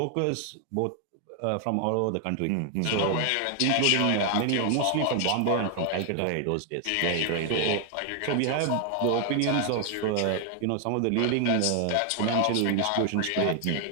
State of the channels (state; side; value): different; both; correlation 0.00